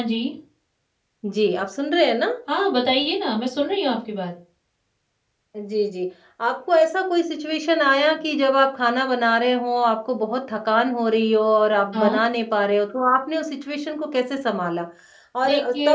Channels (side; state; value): both; identical; correlation 1.00